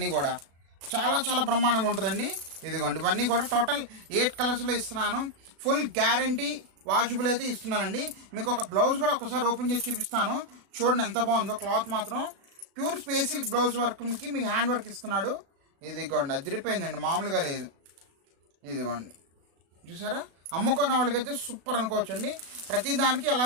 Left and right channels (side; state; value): left; late; 36 ms